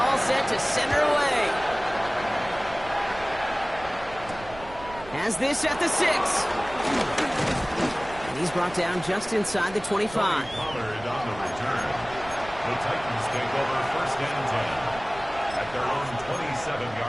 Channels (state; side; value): noise; right; rumble, 17 dB below the sound